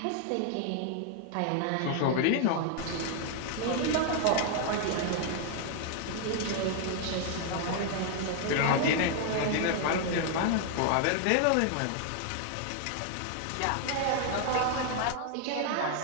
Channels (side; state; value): both; different; correlation 0.00